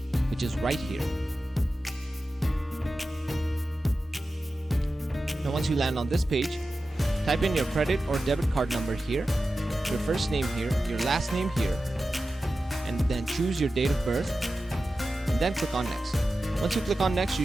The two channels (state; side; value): normal; both; correlation 0.93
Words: which is right here. Now, once you land on this page, type in your credit or debit card number here, your first name here, your last name here, and then choose your date of birth, and then click on next. Once you click on next, you